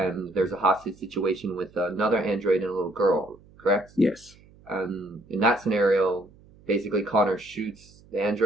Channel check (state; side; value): noise; right; hum, 26 dB below the sound